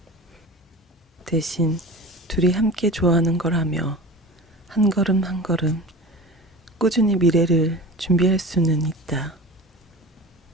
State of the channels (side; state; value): both; normal; correlation 0.35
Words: 대신 둘이 함께 좋아하는 걸 하며 한 걸음 한 걸음 꾸준히 미래를 준비할 수는 있다.